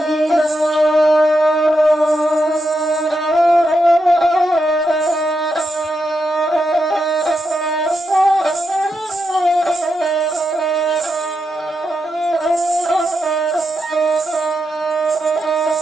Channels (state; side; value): normal; both; correlation 0.84